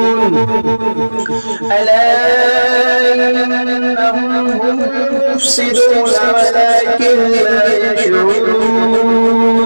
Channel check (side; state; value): both; inverted; correlation -1.00